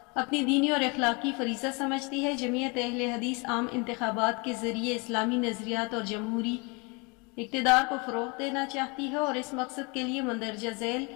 اپنی دینی اور اخلاقی فریضہ سمجھتی ہے۔ جمعیت اہل حدیث عام انتخابات کے ذریعے اسلامی نظریات اور جمہوری اقتدار کو فروغ دینا چاہتی ہے اور اس مقصد کے لیے مندرجہ ذیل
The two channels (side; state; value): right; quieter; 29.8 dB